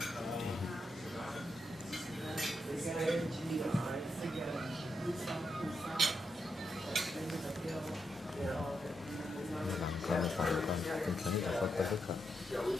còn tình trạng này có rất là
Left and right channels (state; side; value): normal; both; correlation 0.84